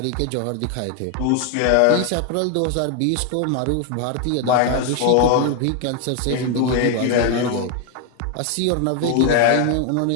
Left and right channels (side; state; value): both; different; correlation 0.00